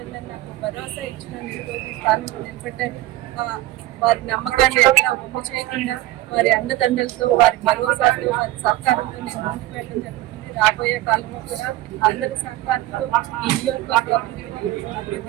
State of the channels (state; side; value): quieter; left; 16.0 dB